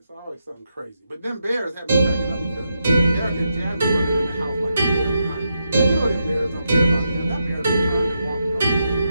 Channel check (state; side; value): inverted; both; correlation -0.84